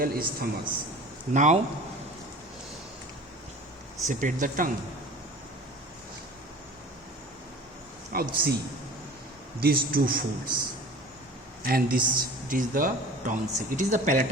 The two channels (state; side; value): normal; both; correlation 0.41